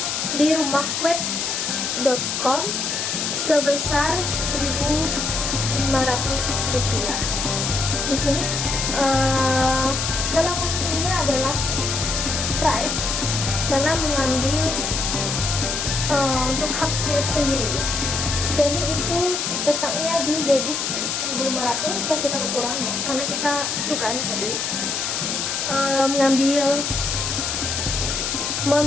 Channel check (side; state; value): left; noise; hiss, 1 dB below the sound